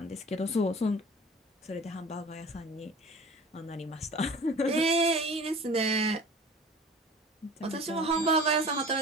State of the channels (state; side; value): normal; both; correlation 0.41